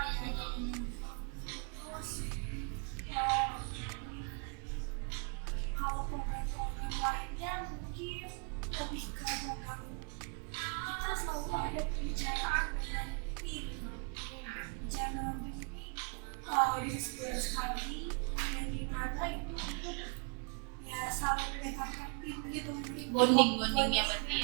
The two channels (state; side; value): quieter; left; 36.4 dB